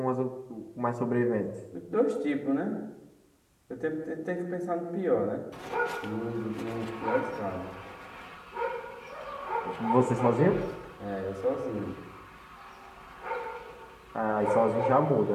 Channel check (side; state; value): both; identical; correlation 1.00